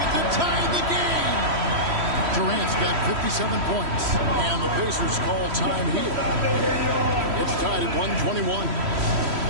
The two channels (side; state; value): left; late; 3.1 ms